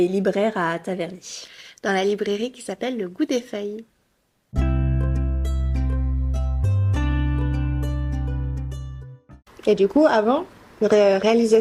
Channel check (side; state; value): both; identical; correlation 1.00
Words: libraire à Taverny. dans la librairie qui s'appelle Le Goût des Feuilles. Et du coup, avant,